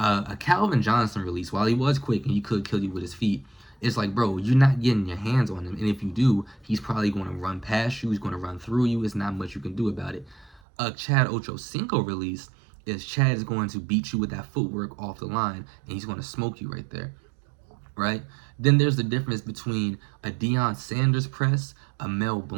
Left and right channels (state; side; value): drops out; left; at 10.6 s